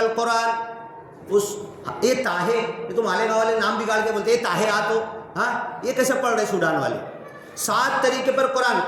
اس یہ طاہے, یہ تو مالیگاؤں والے نام بگاڑ کے بولتے ہیں طاہے آ تو, ہاں یہ کیسے پڑھ رہے سوڈان والے؟ 7 طریقے پر قرآن.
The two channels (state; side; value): identical; both; correlation 1.00